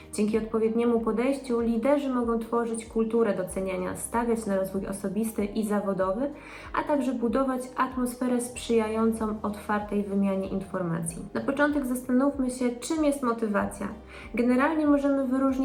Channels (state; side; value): identical; both; correlation 1.00